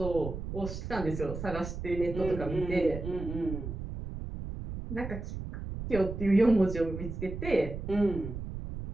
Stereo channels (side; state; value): right; noise; rumble, 7 dB below the sound